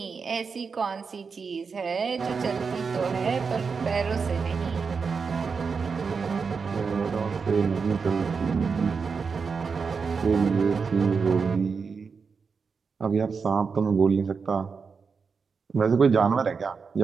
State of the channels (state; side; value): quieter; left; 5.3 dB